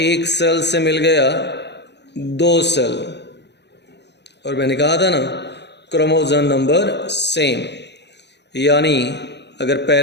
सेल से मिल गया 2 सेल, और मैंने कहा था ना क्रोमोसोम नंबर सेम। यानी अगर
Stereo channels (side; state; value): right; late; 0.50 ms